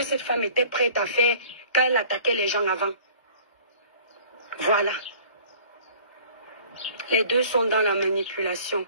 cette femme était prête à faire quand elle attaquait les gens avant. Voilà. Les deux sont dans la manipulation.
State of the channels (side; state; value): both; inverted; correlation -0.49